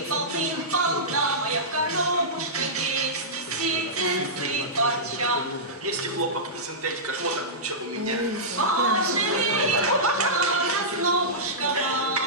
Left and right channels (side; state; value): both; normal; correlation -0.15